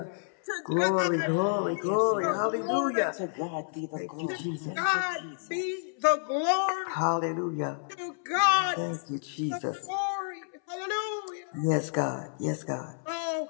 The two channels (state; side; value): silent; right; 58 dB below the other